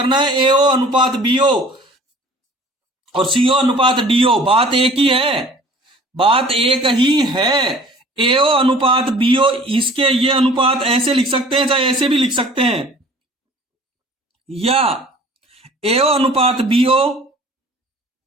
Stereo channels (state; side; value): normal; both; correlation 0.49